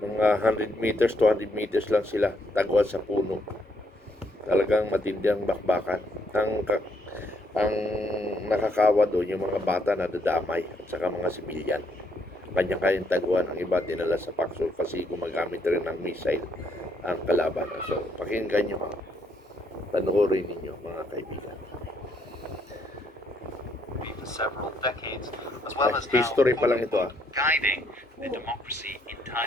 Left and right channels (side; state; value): both; normal; correlation 0.72